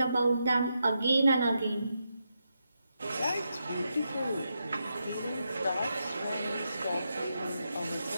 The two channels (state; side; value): inverted; both; correlation -0.84